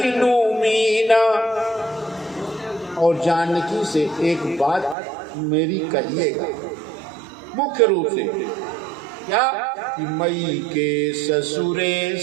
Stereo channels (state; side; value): drops out; left; at 5.0 s